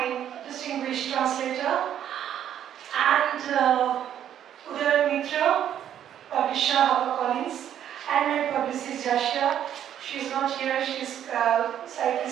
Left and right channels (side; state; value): left; quieter; 10.2 dB